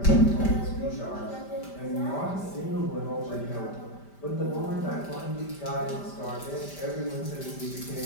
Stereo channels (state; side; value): late; right; 5.1 ms